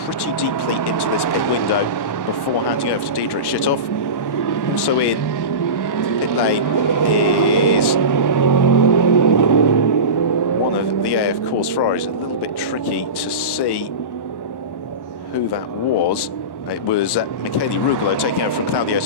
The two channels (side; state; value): right; late; 1.1 ms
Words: pretty deeply into this pit window before handing over to Diedrich Schitthoff. Also in the pit lane is one of the AF Course Ferraris. A little bit tricky to see who that was. It was Michele Rugolo taking over from Claudio